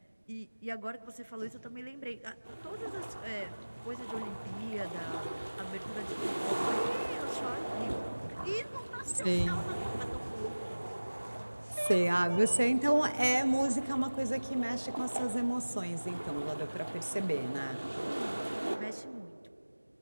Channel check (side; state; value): both; inverted; correlation -1.00